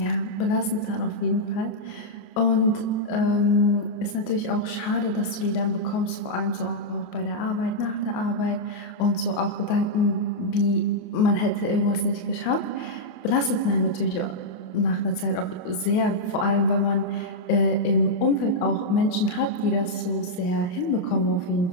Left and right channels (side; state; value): right; late; 28 ms